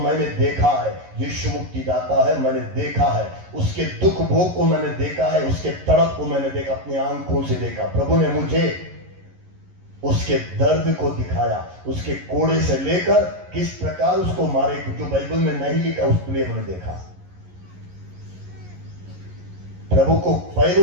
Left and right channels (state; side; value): late; left; 11 ms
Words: देखा है, यीशु मुक्तिदाता है, मैंने देखा है, उसके दुख भोग को मैंने देखा है, उसके तड़प को मैंने देखा, अपनी आंखों से देखा। प्रभु ने मुझे उसके दर्द को दिखाया, उसके कोड़े से लेकर किस प्रकार उसको मारे, जो बाइबल में नहीं लिखा उसके लिए मैंने देखा। प्रभु को